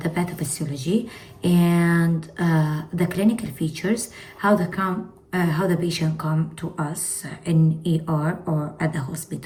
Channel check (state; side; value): identical; both; correlation 1.00